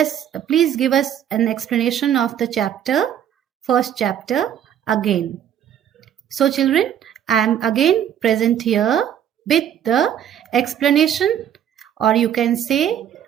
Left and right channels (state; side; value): quieter; left; 9.8 dB